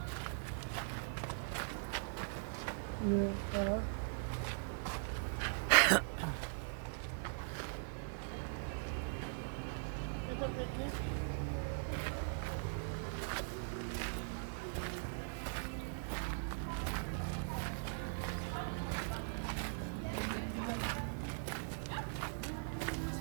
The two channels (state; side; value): silent; left; 50 dB below the other